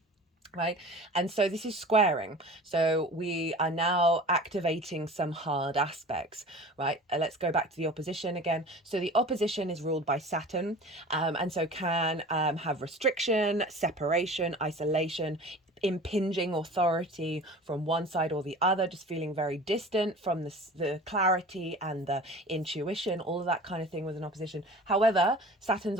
Right. And so this is squaring. So we are now activating some hard aspects. Right. Let's go back to the opposition again. So the opposition is ruled by Saturn, and so can have restriction, separation, isolation, impinging authority from one side or the other, just feeling very distant from the clarity and the intuition, all of that kind of thing with an opposition. However,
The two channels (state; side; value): normal; both; correlation 0.40